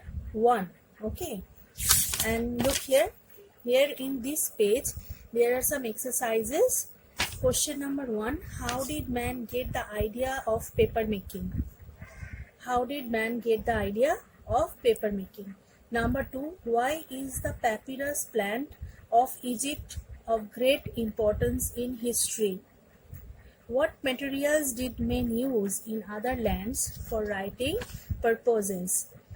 1. Okay, and look here. Here in this page, there are some exercises. Question number 1: how did man get the idea of paper making? How did man get the idea of paper making? Number 2: why is the papyrus plant of Egypt of great importance in history? What materials did men use in other lands for writing purposes?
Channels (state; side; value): identical; both; correlation 1.00